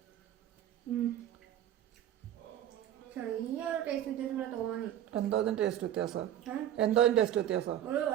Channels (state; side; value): quieter; left; 11.3 dB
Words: എന്തോന്നും ടേസ്റ്റ് വ്യത്യാസം? എന്തോന്നും ടേസ്റ്റ് വ്യത്യാസം?